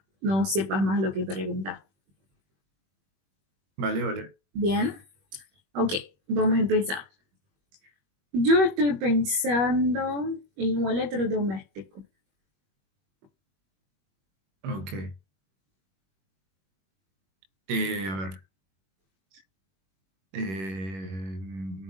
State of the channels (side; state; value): left; late; 21 ms